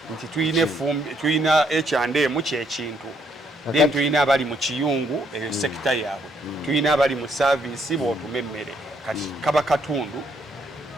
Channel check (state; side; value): normal; both; correlation 0.71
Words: nti tuyina H&M kyekintu then tuyina abali mu kiyungu eyo sekita yaabwe tuyina abali mu service bw'otuma emmere kati kaba katundu